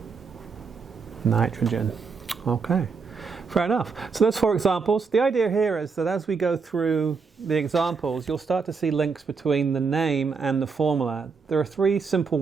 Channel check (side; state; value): left; quieter; 5.1 dB